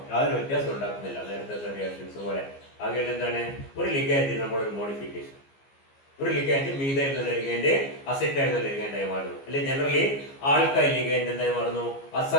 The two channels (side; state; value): right; late; 15 ms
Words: യാതൊരു വ്യത്യാസം ഉണ്ടാക്കുന്നില്ല നേരത്തെ റിയാക്ഷൻസ് പോലെ. ആകെ എന്താണ് ഒരു ലിഗാൻഡ് നമ്മളൊരു മോഡിഫിക്കേഷൻ, ഒരു ലിഗാൻഡ് മീഥൈൽ എന്നുള്ള ലിഗാൻഡ് അസെറ്റൈൽ എന്നുള്ള ലിഗാൻഡായി മാറുന്നു, അല്ലെങ്കിൽ ജനറലി ആൽക്കൈൽ ലിഗാൻഡ് എന്തായി മാറുന്നു?